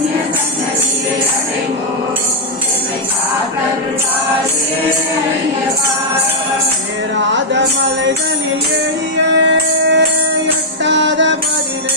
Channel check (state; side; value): normal; both; correlation -0.05